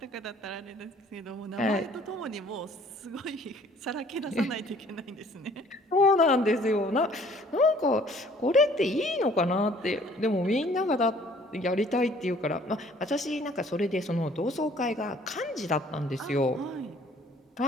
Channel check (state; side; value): normal; both; correlation 0.56